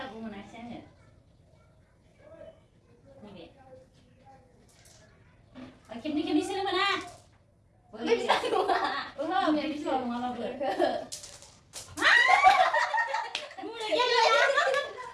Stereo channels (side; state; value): both; identical; correlation 1.00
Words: मोनासै आङो नैबे खेबनै खेबनै सोनो मोना nggak bisa semua ओहो बिदि नङाबाबो